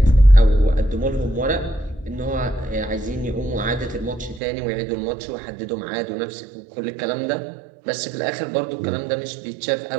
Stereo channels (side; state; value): left; drops out; at 4.4 s